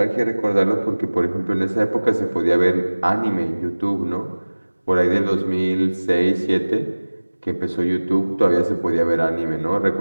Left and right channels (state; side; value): inverted; both; correlation -1.00